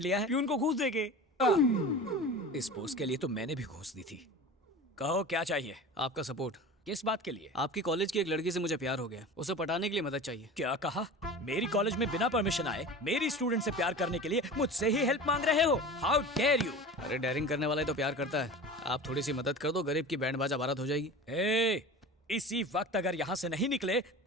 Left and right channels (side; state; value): both; normal; correlation 0.34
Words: लिया है? प्यून को घूस देके। इस पोस्ट के लिए तो मैंने भी घूस दी थी। कहो क्या चाहिए? आपका सपोर्ट। किस बात के लिए? आपकी कॉलेज की एक लड़की से मुझे प्यार हो गया, उसे पटाने के लिए मदद चाहिए। क्या कहा? मेरी कॉलेज में बिना परमिशन आए मेरी स्टूडेंट से प्यार करने के लिए मुझसे ही हेल्प मांग रहे हो? How dare you! अरे डेयरिंग करने वाला ही तो प्यार करता है। आप थोड़ी सी मदद कर दो, गरीब की बैंड बाजा बारात हो जाएगी। इसी वक्त अगर यहाँ से नहीं निकले